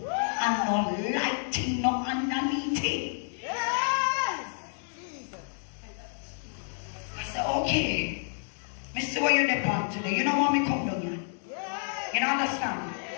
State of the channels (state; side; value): silent; right; 58 dB below the other